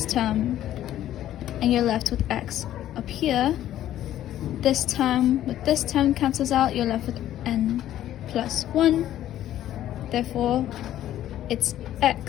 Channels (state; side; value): quieter; right; 12.5 dB